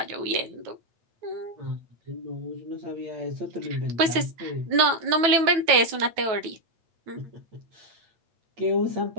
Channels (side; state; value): left; late; 9.2 ms